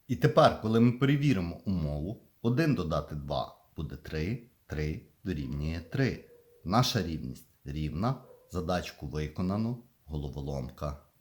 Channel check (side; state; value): both; identical; correlation 1.00